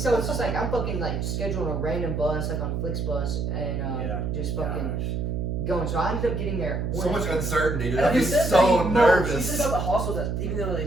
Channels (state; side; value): noise; right; hum, 1 dB below the sound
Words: it's just like I'm fucking like scheduling a random bus like on Flixbus and just fucking going. So I ended up getting there. At 1 So much a.m. uncertainty, dude. And I'd be he said so that he nervous. said about the hostel that even though they